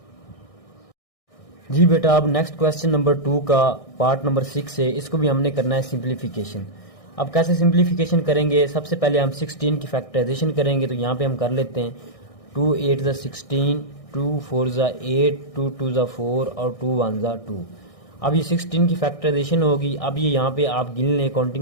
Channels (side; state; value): right; late; 1.6 ms